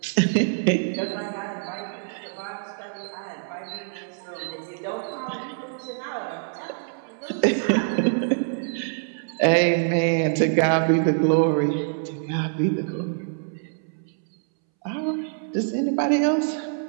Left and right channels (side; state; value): left; silent; 62 dB below the other